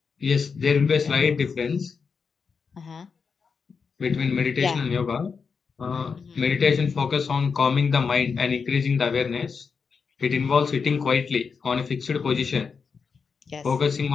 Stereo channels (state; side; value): quieter; right; 5.5 dB